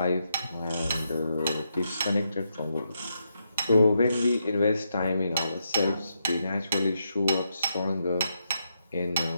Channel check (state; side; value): inverted; both; correlation -0.82